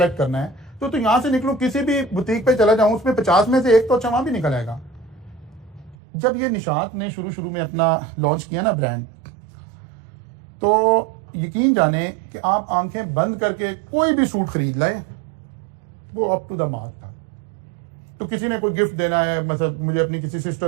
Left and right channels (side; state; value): left; drops out; at 6.0 s